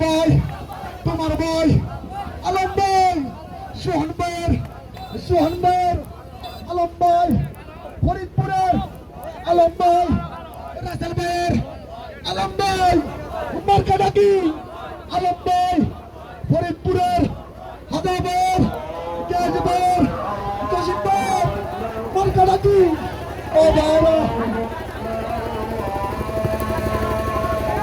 ভাই তোমার ভাই আলম ভাই সোহান ভাইয়ের আলম ভাই ফরিদপুরের আলম ভাই রাসেল ভাইয়ের আলম ভাই মার্কাডাকি আলম ভাই ফরিদপুরের হাদা ভাইয়ের গ্যাস ভাইয়ের জসিম ভাই মার্কাডাকি ও বাবা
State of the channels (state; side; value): identical; both; correlation 1.00